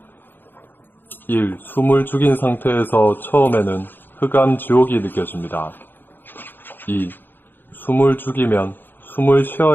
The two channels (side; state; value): right; late; 0.095 ms